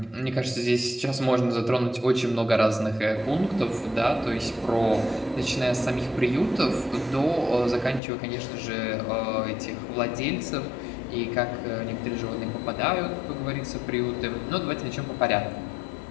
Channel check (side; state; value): right; drops out; at 8.0 s